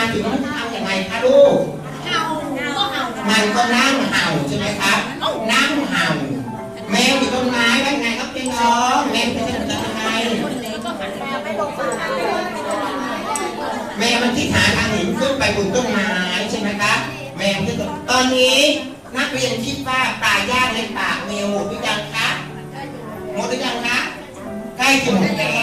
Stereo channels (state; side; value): identical; both; correlation 1.00